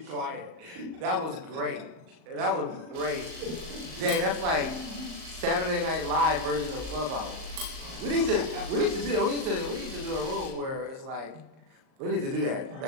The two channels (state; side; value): late; left; 38 ms